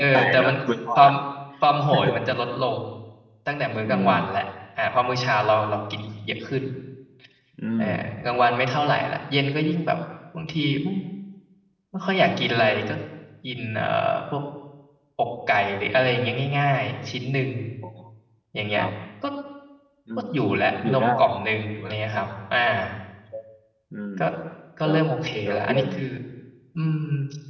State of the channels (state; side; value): identical; both; correlation 1.00